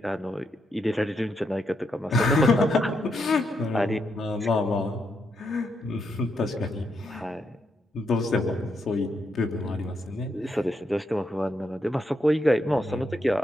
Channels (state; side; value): normal; both; correlation 0.80